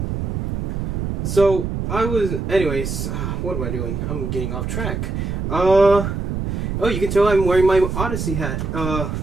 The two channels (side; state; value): right; noise; rumble, 3 dB below the sound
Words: So, anyways, what am I doing? I'm getting off track. Oh, you can tell I'm wearing my Odyssey hat.